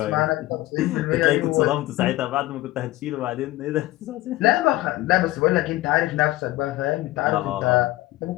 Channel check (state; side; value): quieter; right; 17.6 dB